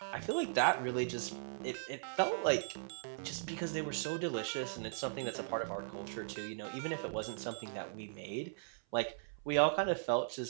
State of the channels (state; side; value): silent; left; 52 dB below the other